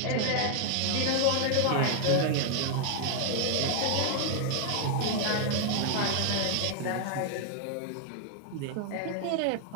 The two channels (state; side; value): different; both; correlation 0.00